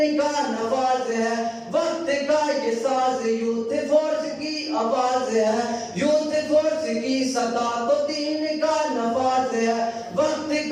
کا نواز ہے. وقت کا یہ ساز یوتھ فورس کی آواز ہے. یوتھ فورس کی صدا تو دین کا نواز ہے. وقت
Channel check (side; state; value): both; identical; correlation 1.00